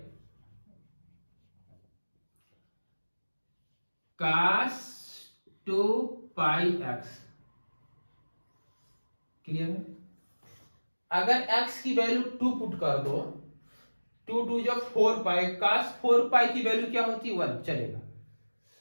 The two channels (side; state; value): both; inverted; correlation -1.00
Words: cos 2 pi x। Clear है? अगर x की वैल्यू 2 पुट कर दो, 2 2 जो 4 पाई, cos 4 पाई की वैल्यू क्या होती है? 1 चलेगा।